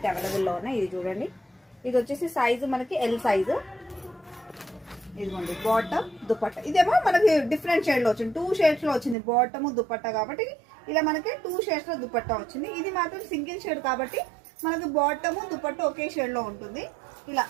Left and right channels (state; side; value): drops out; left; at 9.2 s